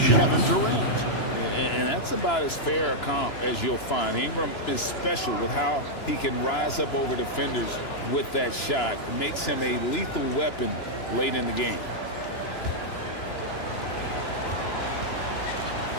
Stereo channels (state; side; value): late; right; 2.9 ms